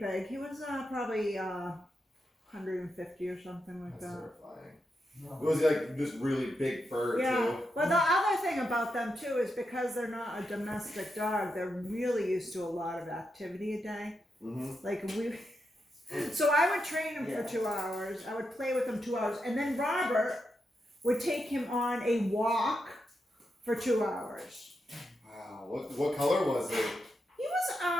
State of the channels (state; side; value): normal; both; correlation 0.85